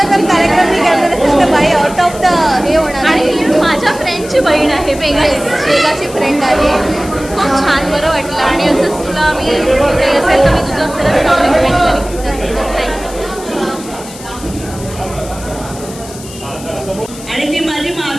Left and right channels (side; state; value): left; noise; hiss, 16 dB below the sound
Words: जर कार्यक्रम मी केला तर बाई आउट ऑफ द हे होणार. आणि माझ्या फ्रेंडची बहीण आहे, वेगाची फ्रेंड आहे. खूप छान बरं वाटलं आणि असंच तुला मी असेल तर मी तुझं खरंच नाव रिकमेंड करेन. आणि ती माझी